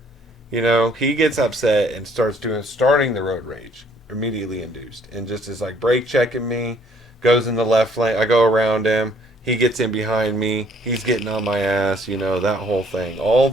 He gets upset and starting the road rage, immediately induced, and just is like brake checking me, goes in the left lane. I go around him. He gets in behind me. He's getting on my ass. That whole thing, all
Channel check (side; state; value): both; normal; correlation 0.62